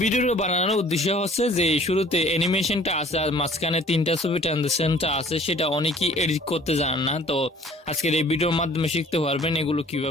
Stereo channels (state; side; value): normal; both; correlation 0.53